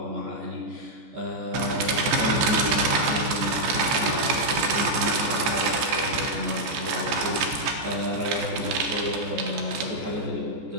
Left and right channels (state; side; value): late; left; 14 ms